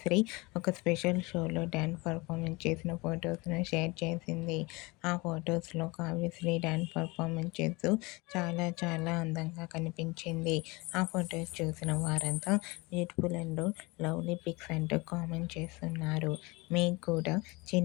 ఒక స్పెషల్ షోలో డ్యాన్స్ పర్ఫార్మెన్స్ చేసిన ఫొటోస్ను షేర్ చేసింది. ఆ ఫొటోస్లో కావ్యశ్రీ డ్యాన్స్ పర్ఫార్మెన్స్ చేస్తూ చాలా అందంగా కనిపించింది. ఆ ఫొటోస్ చూసిన వారంతా బ్యూటిఫుల్ అండ్ లవ్లీ పిక్స్ అంటూ కామెంట్ చేస్తున్నారు. మీకు కూడా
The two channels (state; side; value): quieter; right; 25.0 dB